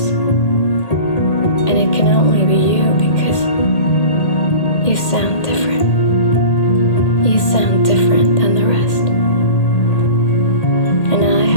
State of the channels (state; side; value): late; right; 1.8 ms